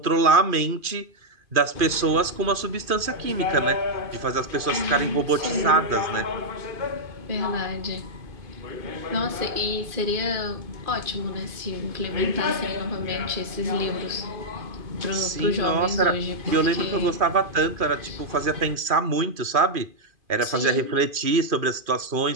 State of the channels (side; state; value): left; late; 2.5 ms